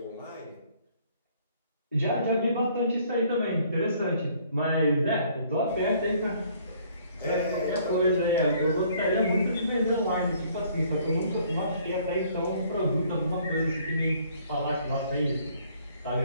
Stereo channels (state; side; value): inverted; both; correlation -0.61